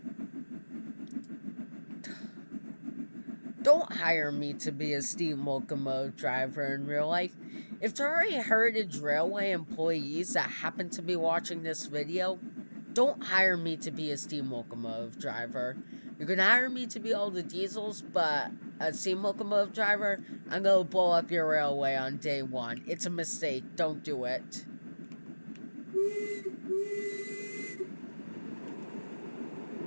Don't hire me to be a steam locomotive driver in real life. If there are any Heritage Railway employees that happen to be watching this video, don't hire me to be a steam locomotive driver. You can hire me to be all the diesels, but a steam locomotive driver, I'm gonna blow up your railway on day one. It's a mistake. Don't do it.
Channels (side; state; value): both; inverted; correlation -1.00